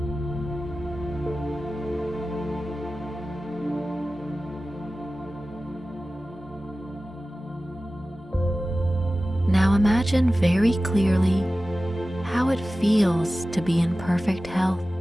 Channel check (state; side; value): normal; both; correlation 0.96